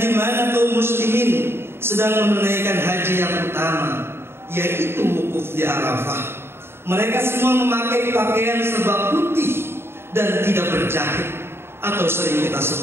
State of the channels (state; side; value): late; left; 0.12 ms